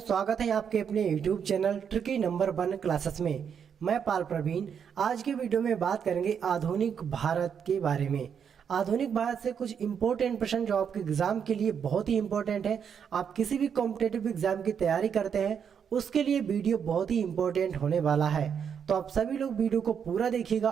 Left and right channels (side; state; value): left; quieter; 7.5 dB